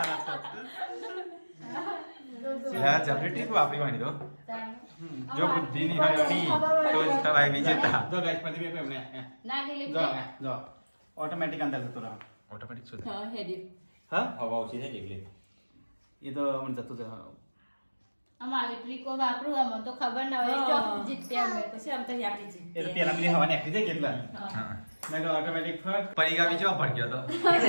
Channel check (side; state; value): both; inverted; correlation -1.00